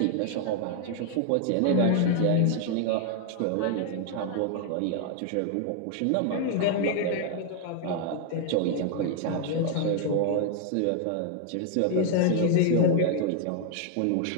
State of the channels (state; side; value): different; both; correlation 0.00